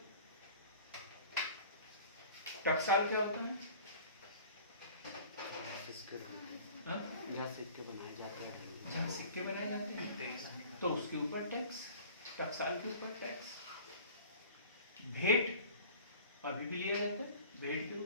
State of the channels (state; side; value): inverted; both; correlation -0.45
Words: टकसाल क्या होता है? हाँ? जहाँ सिक्के बनाए जाते हैं, जहाँ सिक्के बनाए जाते हैं तो उसके ऊपर टैक्स, टकसाल के ऊपर टैक्स। भेंट अभी भी लिया जाता है, भेंट के